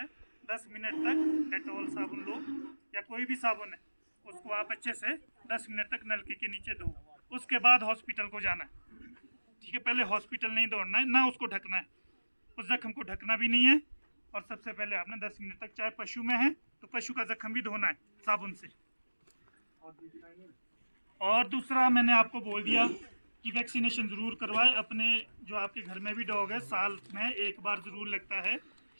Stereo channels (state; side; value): inverted; both; correlation -1.00